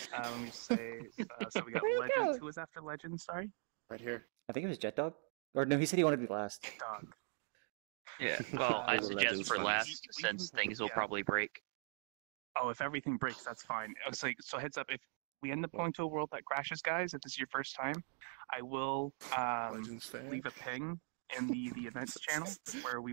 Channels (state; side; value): silent; left; 50 dB below the other